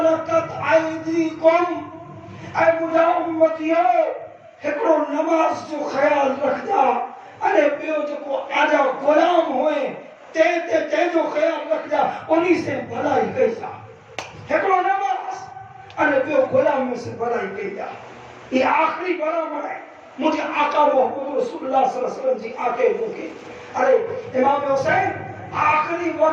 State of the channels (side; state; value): both; identical; correlation 1.00